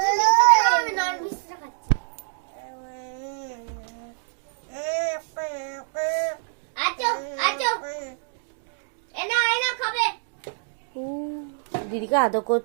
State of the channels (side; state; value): left; silent; digital silence